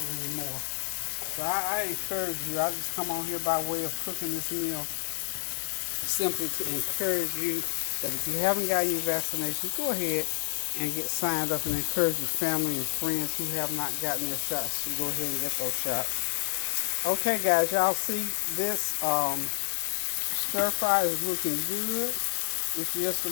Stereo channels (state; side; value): silent; right; digital silence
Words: anymore. So I encourage you. I just come on here by way of cooking this meal simply to encourage you that if you haven't gotten your vaccination, go ahead and get signed up, and encourage your family and friends who have not gotten their shots to go ahead and get those shots. Okay, guys, y'all see this stir fry is looking good. It's just